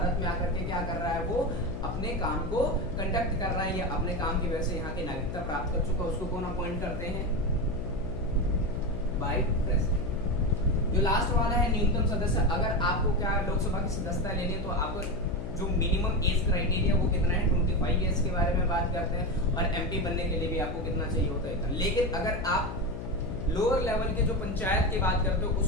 में आकर के क्या कर रहा है, वो अपने काम को कंडक्ट कर रहा है या अपने काम की वजह से यहाँ की नागरिकता प्राप्त कर चुका है, उसको कौन अपॉइंट करते हैं, बाय प्रेसिडेंट। जो लास्ट वाला है न्यूनतम सदस्य। अगर आपको क्या लोकसभा की सदस्यता लेनी है तो आपको जो मिनिमम एज क्राइटेरिया वो कितना है, 25 ईयर्स के बारे में बात करते हैं। और MP बनने के लिए भी आपको कितना चाहिए होता है, इतना। लेकिन अगर आप लोअर लेवल के जो पंचायत की बात करते हो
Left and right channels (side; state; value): left; noise; hum, 8 dB below the sound